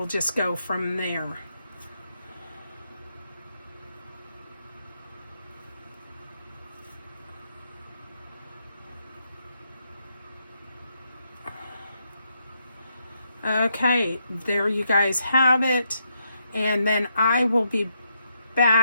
just go from there. Okay, there you guys have it. And then I will be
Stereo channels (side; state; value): both; inverted; correlation -0.79